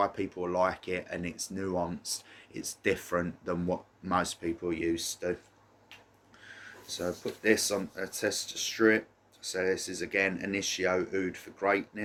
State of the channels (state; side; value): identical; both; correlation 1.00